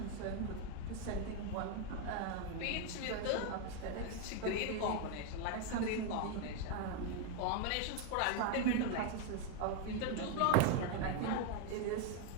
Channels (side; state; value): both; different; correlation 0.01